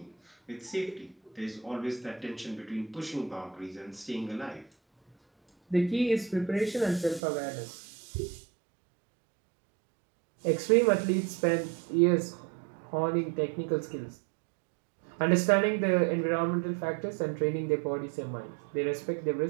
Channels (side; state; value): left; drops out; at 7.2 s